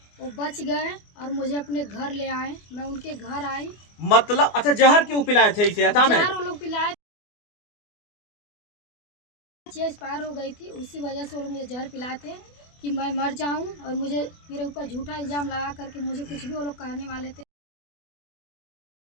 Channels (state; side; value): late; right; 24 ms